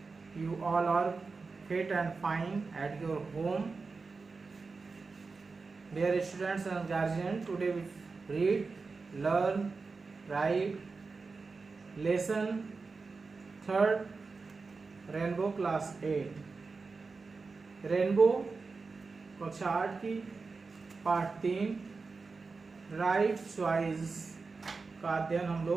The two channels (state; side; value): quieter; left; 4.3 dB